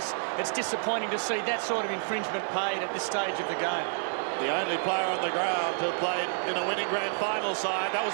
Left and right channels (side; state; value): left; silent; digital silence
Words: it's disappointing to see that sort of infringement paid at this stage of the game. The only player on the ground who played in a winning grand final side, that was